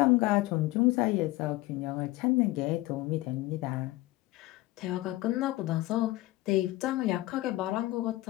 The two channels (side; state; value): right; quieter; 18.5 dB